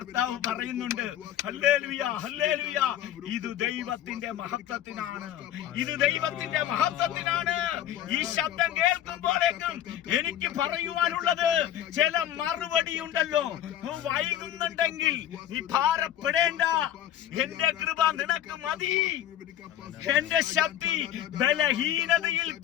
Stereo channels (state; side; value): quieter; right; 11.6 dB